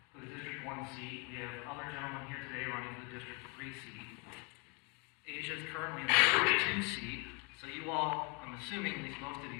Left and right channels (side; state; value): right; quieter; 33.3 dB